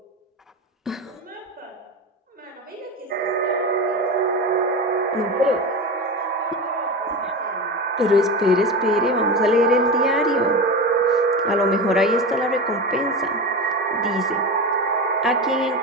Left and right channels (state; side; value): normal; both; correlation 0.23